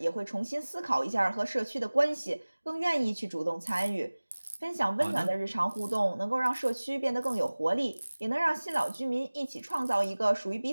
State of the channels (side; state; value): both; inverted; correlation -1.00